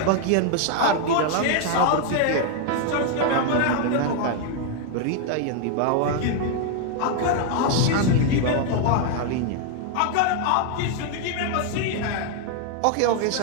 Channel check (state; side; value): different; both; correlation 0.00